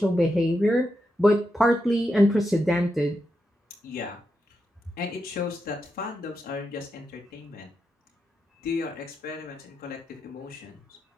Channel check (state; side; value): normal; both; correlation 0.86